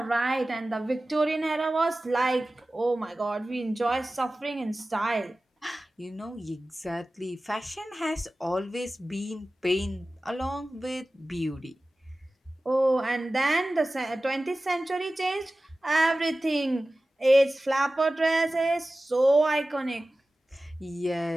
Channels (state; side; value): normal; both; correlation 0.96